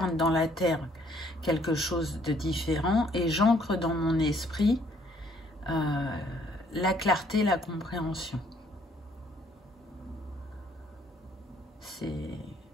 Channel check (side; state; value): both; normal; correlation 0.64